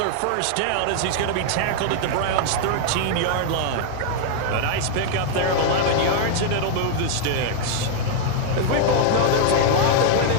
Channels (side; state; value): both; different; correlation -0.01